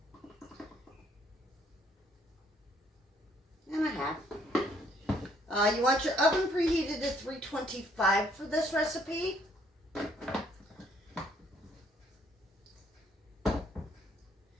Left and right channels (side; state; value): both; normal; correlation 0.65